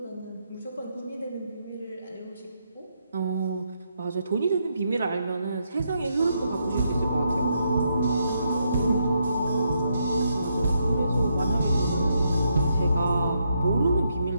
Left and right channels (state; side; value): inverted; both; correlation -0.78